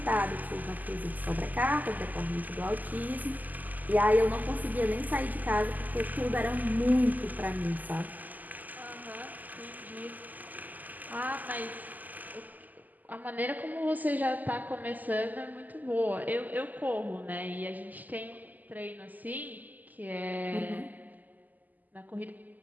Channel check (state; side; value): late; left; 0.082 ms